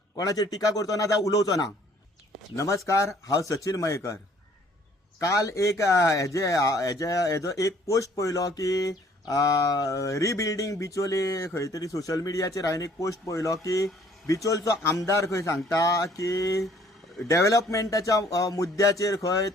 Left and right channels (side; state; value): both; normal; correlation 0.59